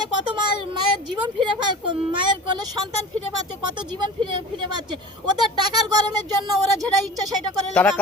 কত মায়ের জীবন ফিরে মায়ের কোলে সন্তান ফিরে পাচ্ছে, কত জীবন ফিরে পাচ্ছে। ওদের টাকার গরমের জন্য ওরা যেটা ইচ্ছা সেটা করে। তারা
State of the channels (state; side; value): normal; both; correlation 0.37